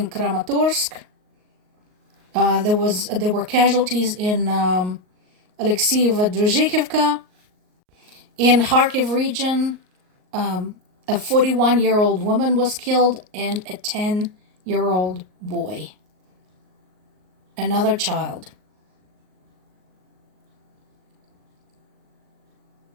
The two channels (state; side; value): late; left; 38 ms